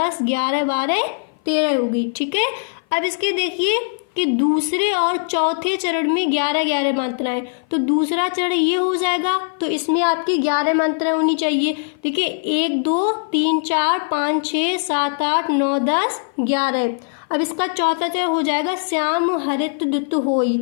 11, 12, 13 होगी। ठीक है, अब इसके देखिए कि दूसरे और चौथे चरण में 11-11 मात्राएं, तो दूसरा चरण ये हो जाएगा, तो इसमें आपकी 11 मात्राएं होनी चाहिए। देखिए 1, 2, 3, 4, 5, 6, 7, 8, 9, 10, 11। अब इसका चौथा चरण हो जाएगा श्याम हरित दुत होई,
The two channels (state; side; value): silent; right; 56 dB below the other